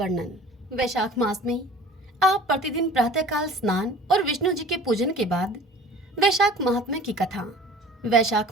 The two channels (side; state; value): both; normal; correlation 0.45